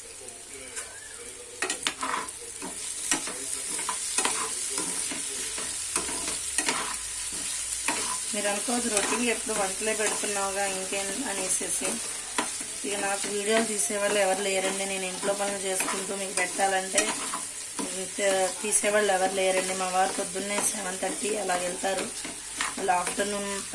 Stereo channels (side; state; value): both; identical; correlation 1.00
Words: మీరు అనుకోవద్దు రొటీన్ ఎప్పుడు వంటలే పెడుతున్నావుగా ఇంకేం అనేసి. ఇక నాకు వీడియోలు తీసేవాళ్ళు ఎవరు లేరండి. నేను ఇంట్లో పనులు చేసుకుంటూ మీకు పెట్టాలంటే తీసేవాళ్ళు ఎవరు లేరండి. మా వారు పొద్దున్నే 7:30 అలా వెళ్తారు. వాళ్ళు ఆఫ్టర్నూన్